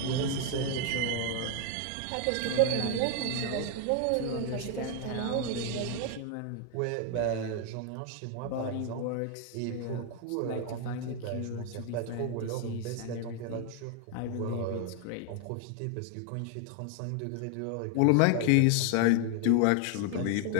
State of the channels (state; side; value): different; both; correlation 0.00